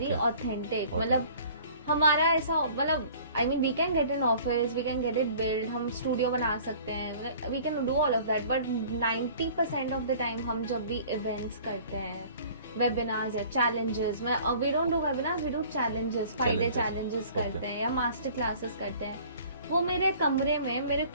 okay. authentic. मतलब हमारा ऐसा मतलब I mean we can get an office, we can get it build, हम studio बना सकते हैं, we can do all of that, but 90% of the time हम जब भी इवेंट्स करते हैं, वेबिनार्स या challenges, we don't do webinars, we do challenges, 5 day challenges करते हैं या मास्टर क्लासेस करते हैं, वो मेरे कमरे में मेरे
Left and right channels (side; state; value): both; inverted; correlation -0.49